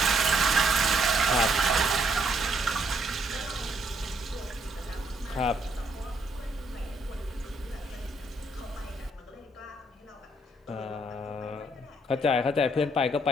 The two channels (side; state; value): both; normal; correlation 0.71